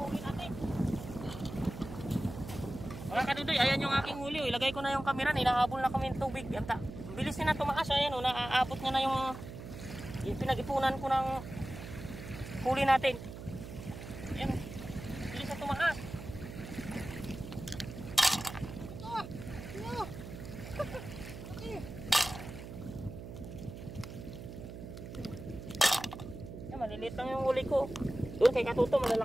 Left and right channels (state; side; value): noise; right; hum, 11 dB below the sound